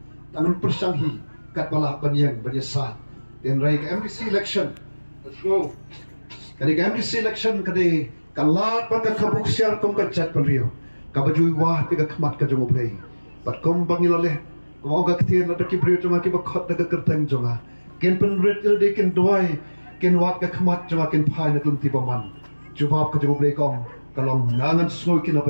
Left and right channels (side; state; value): both; inverted; correlation -1.00